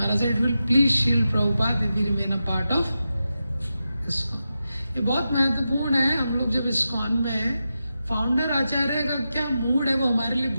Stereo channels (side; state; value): both; inverted; correlation -0.90